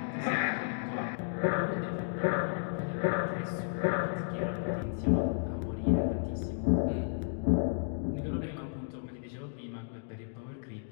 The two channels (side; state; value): right; silent; digital silence